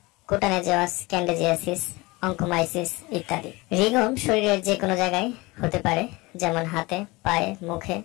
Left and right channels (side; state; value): right; quieter; 23.1 dB